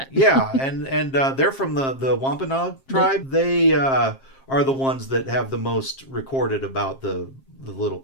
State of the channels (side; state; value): right; late; 7.5 ms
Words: Yeah, and they're from the Wampanoag tribe. They are the ones that have the most recorded about the little